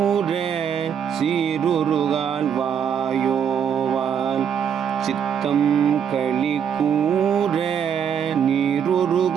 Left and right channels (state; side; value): quieter; left; 8.0 dB